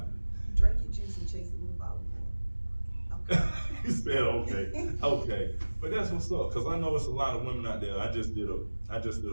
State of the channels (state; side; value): inverted; both; correlation -1.00